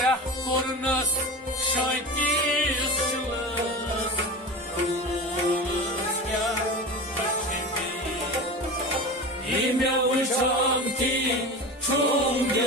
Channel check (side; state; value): both; normal; correlation 0.29